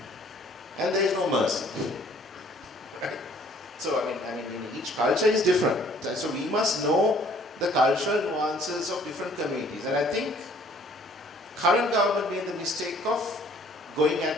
And there is no mercy. Right? So, I mean, each culture is different. So we must know the cultural nuances of different communities. And I think current government made the mistake of going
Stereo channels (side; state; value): both; normal; correlation 0.58